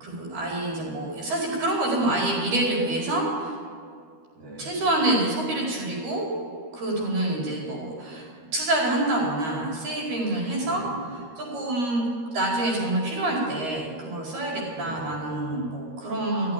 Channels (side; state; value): left; late; 13 ms